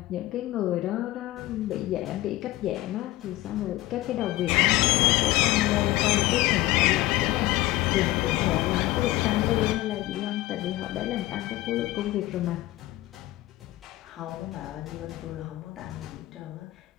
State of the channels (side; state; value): right; quieter; 17.2 dB